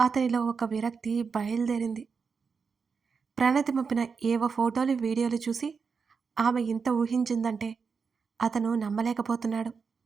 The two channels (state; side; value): quieter; left; 5.5 dB